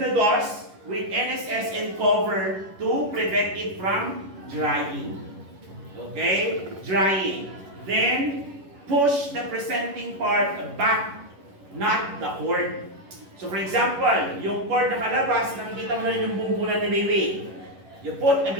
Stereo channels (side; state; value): left; late; 11 ms